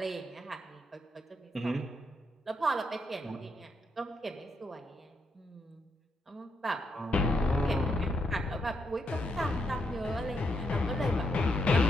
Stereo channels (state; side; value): normal; both; correlation 0.79